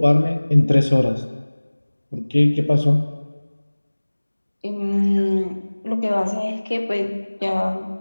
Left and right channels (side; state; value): both; inverted; correlation -1.00